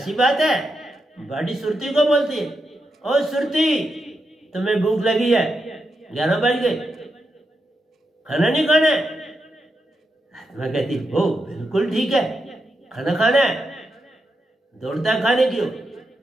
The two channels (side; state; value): both; normal; correlation 0.85